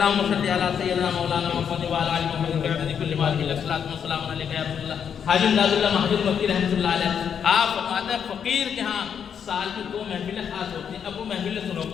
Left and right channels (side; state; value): right; quieter; 7.8 dB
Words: صلی علی سیدنا مولانا محمد و علی محمد وعلی کل مال کی الصلاۃ والسلام علیک یا رسول اللہ۔ حاجی امداد اللہ محمد مکی رحمۃ اللہ علیہ آپ فرماتے ہیں فقیر کے ہاں سال کی 2 محفلیں خاص ہوتی ہیں۔ اب وہ محفلیں سنو